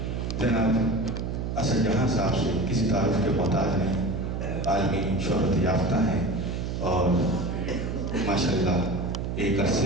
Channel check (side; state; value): right; noise; hum, 3 dB below the sound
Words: جناب اسد جہاں صاحب سے، کسی تعارف کے محتاج نہیں، عالمی شہرت یافتہ ہیں اور ماشاءاللہ ایک